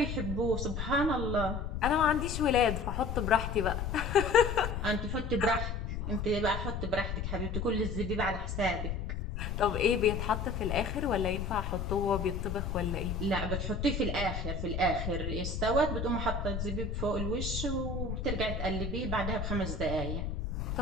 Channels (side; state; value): left; noise; rumble, 3 dB below the sound